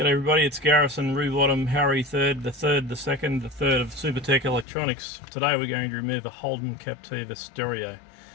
everybody, it's Garrison, Rewottom, Harry, the third of Supertech Electronics. Today we're going to remove a Holden Captiva Stereo.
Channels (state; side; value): drops out; right; at 4.7 s